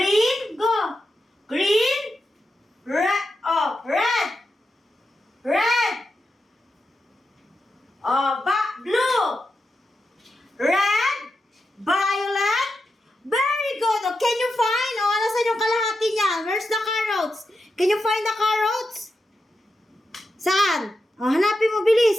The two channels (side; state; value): both; normal; correlation 0.88